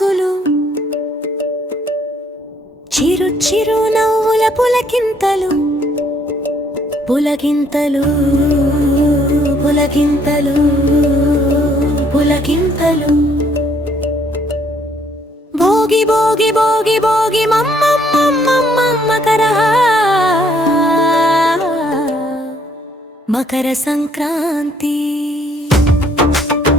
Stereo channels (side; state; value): both; normal; correlation 0.65